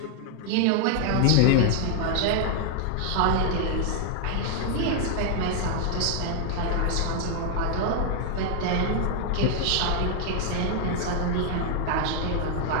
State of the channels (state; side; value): different; both; correlation 0.00